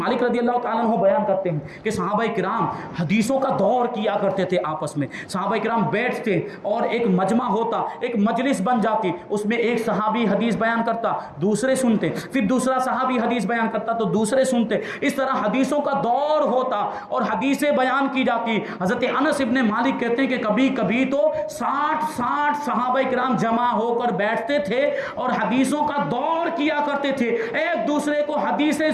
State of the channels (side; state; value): both; identical; correlation 1.00